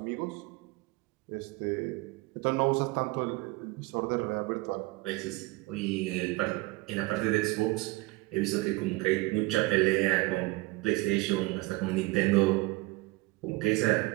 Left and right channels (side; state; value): left; quieter; 22.1 dB